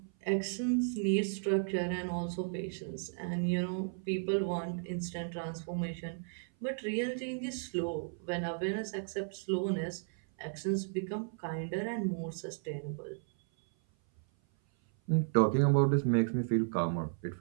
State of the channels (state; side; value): silent; left; 55 dB below the other